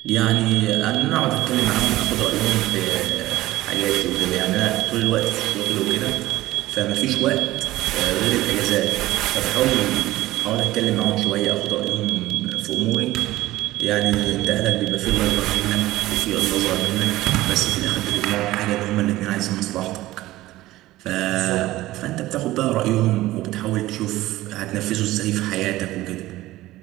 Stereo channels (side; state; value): left; quieter; 16.8 dB